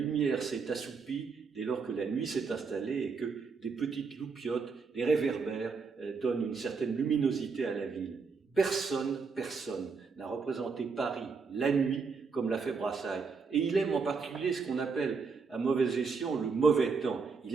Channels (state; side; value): quieter; left; 5.0 dB